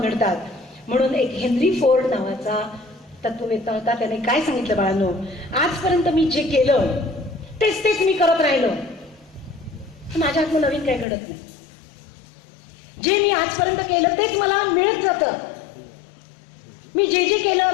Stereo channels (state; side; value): drops out; right; at 11.1 s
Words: घडतात. म्हणून एक हेनरी फोर्ड नावाचा तत्ववेत्ता होता, त्याने काय सांगितलं बाळांनो, आजपर्यंत मी जे केलं तेच मी करत राहिलो, माझ्या हातून नवीन काही घडत नाही. जे मी आजपर्यंत केलं तेच मला मिळत जातं, मी जे